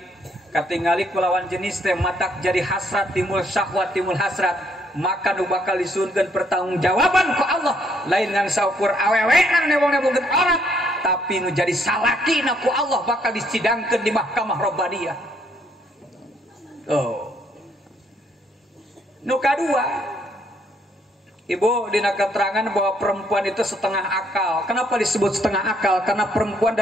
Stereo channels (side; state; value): both; normal; correlation 0.69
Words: kulawan jenis teh matak jadi hasrat timbul syahwat timbul hasrat maka nu bakal disuunkeun pertanggungjawaban ku Allah lain ngan saukur awewean nebong-nebongkeun orang tapi nu jadi salakina ku Allah bakal disidangkeun di mahkamah robbaniyah. Oh. Nu kadua Ibu dina keterangan bahwa perempuan itu setengah akal. Kenapa disebut setengah akal? Karena perempuan